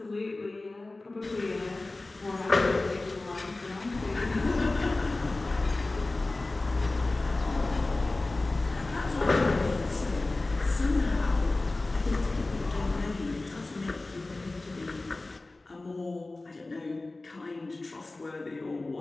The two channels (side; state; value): right; quieter; 3.1 dB